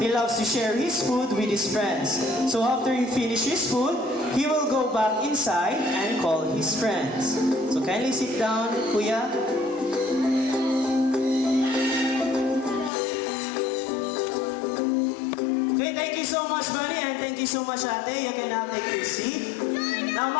He loves to share his food with his friends. So after he finishes food, he will go back inside and call his friends. So kindly sit down, Kuya. Okay, thank you so much, Bunny, and thank you so much, Ate. You can now take your seat. Now,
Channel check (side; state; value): right; drops out; at 12.9 s